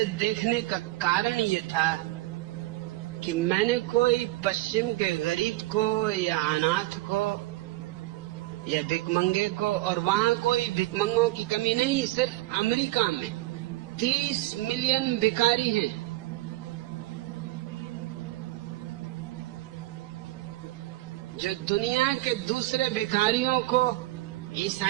देखने का कारण ये था कि मैंने कोई पश्चिम के गरीब को या अनाथ को या भिखमंगे को, और वहां कोई भिखमंगों की कमी नहीं, सिर्फ अमेरिका में 30 मिलियन भिखारी हैं। जो दुनिया के दूसरे भिखारियों को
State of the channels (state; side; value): quieter; left; 18.4 dB